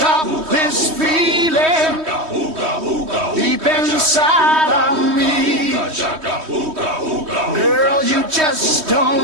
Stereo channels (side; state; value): left; late; 3.2 ms